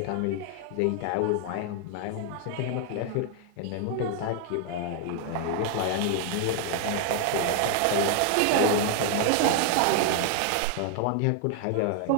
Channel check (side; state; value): both; different; correlation 0.00